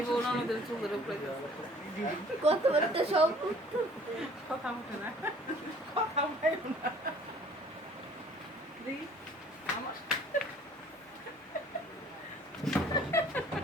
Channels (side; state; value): both; normal; correlation 0.53